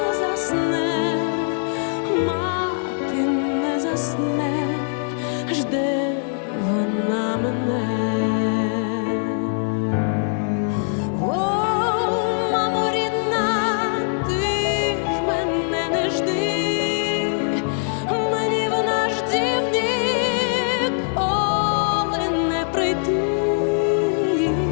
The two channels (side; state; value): right; silent; digital silence